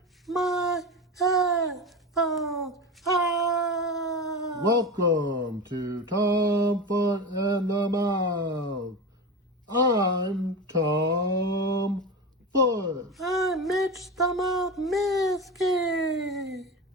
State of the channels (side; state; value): both; normal; correlation 0.25